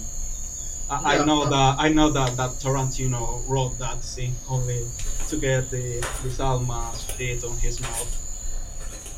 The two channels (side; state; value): both; identical; correlation 1.00